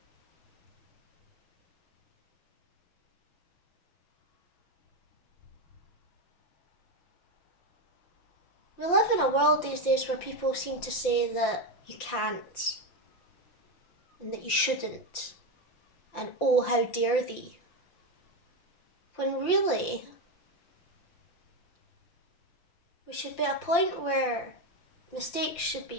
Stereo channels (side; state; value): right; late; 5.8 ms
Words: We live in a world these days where people seem to say that you can't and that you shouldn't and oh, how dare thee. When really, we should be at a point where mistakes should